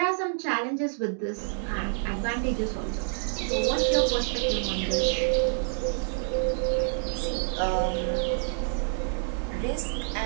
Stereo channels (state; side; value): silent; left; 58 dB below the other